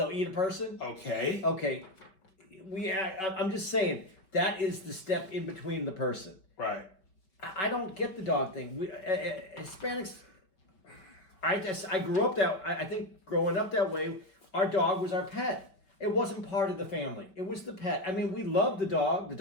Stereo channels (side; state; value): right; late; 5.3 ms